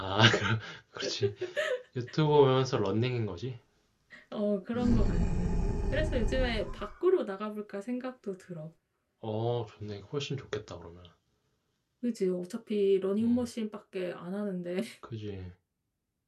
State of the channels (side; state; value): both; identical; correlation 1.00